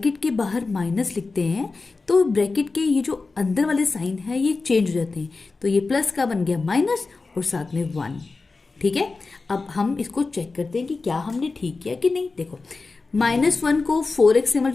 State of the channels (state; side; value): quieter; right; 3.9 dB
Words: के बाहर माइनस लिखते हैं तो ब्रैकेट के ये जो अंदर वाले साइन है ये चेंज हो जाते हैं, तो ये प्लस का बन गया माइनस और साथ में 1, ठीक है। अब हम इसको चेक करते हैं कि क्या हमने ठीक किया कि नहीं। देखो -1 को 4x से